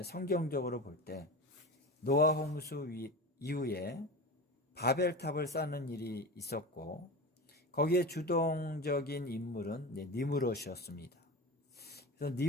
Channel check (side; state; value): both; normal; correlation 0.27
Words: 성경적으로 볼 때 노아 홍수 이후에 바벨탑을 쌓는 일이 있었고 거기에 주동적인 인물은 니므롯이었습니다. 그래서